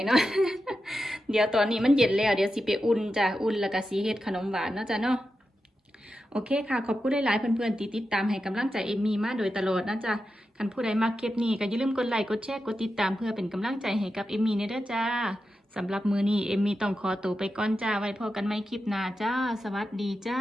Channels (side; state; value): both; normal; correlation 0.90